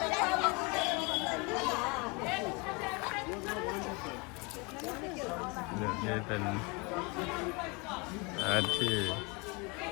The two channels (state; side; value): quieter; right; 29.1 dB